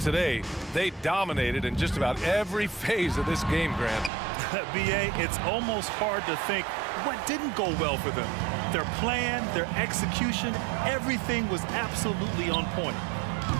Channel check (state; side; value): drops out; left; at 4.1 s